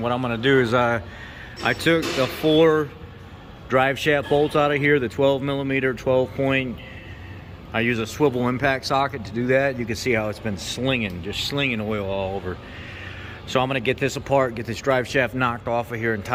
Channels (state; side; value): identical; both; correlation 1.00